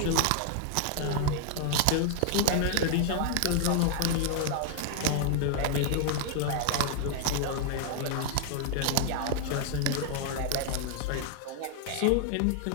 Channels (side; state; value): both; different; correlation 0.00